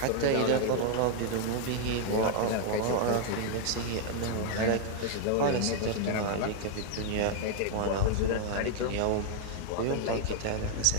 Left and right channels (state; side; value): different; both; correlation 0.00